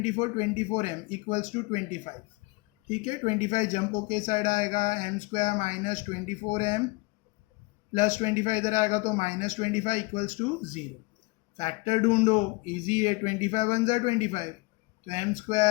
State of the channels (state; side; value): quieter; right; 25.3 dB